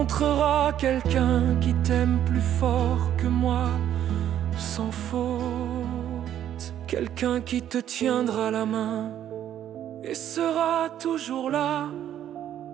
quelqu'un qui t'aime plus fort que moi, sans faute. Quelqu'un qui te tiendra la main et sera toujours là.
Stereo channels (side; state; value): left; quieter; 10.8 dB